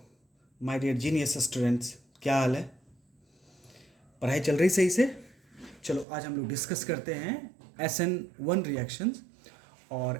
my dear genius students, क्या हाल है? पढ़ाई चल रही सही से? चलो आज हम लोग डिस्कस करते हैं SN1 रिएक्शंस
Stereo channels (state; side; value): drops out; left; at 6.1 s